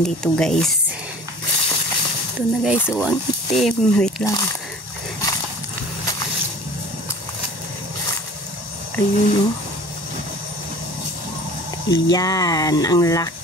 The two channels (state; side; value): late; right; 1.1 ms